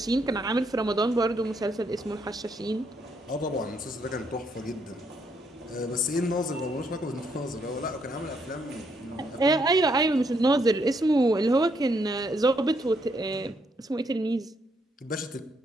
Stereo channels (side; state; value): both; normal; correlation 0.74